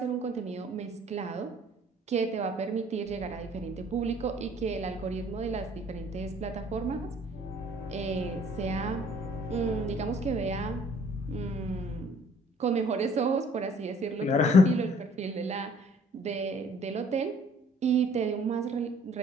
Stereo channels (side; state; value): both; normal; correlation 0.57